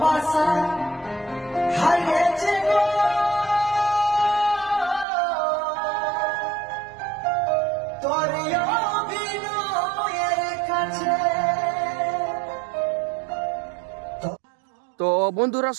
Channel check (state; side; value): drops out; left; at 5.1 s